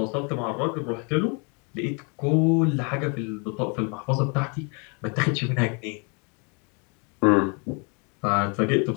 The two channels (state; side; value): quieter; right; 35.0 dB